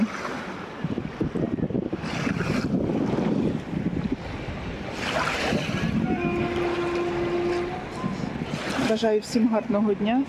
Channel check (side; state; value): both; identical; correlation 1.00